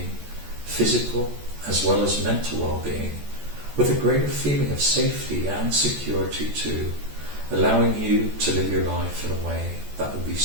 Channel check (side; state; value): left; late; 14 ms